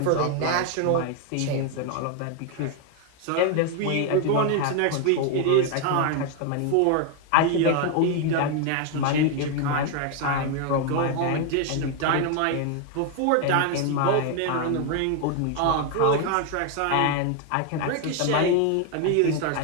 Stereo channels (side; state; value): both; different; correlation 0.01